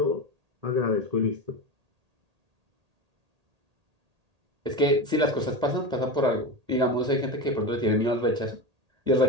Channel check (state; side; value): late; left; 1.8 ms